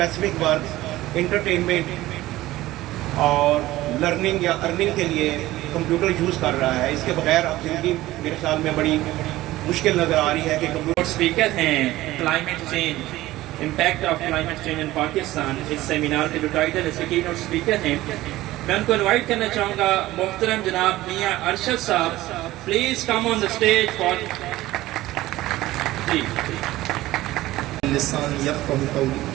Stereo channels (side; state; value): left; quieter; 16.7 dB